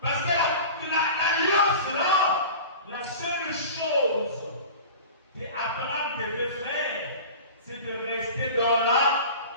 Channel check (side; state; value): both; inverted; correlation -0.36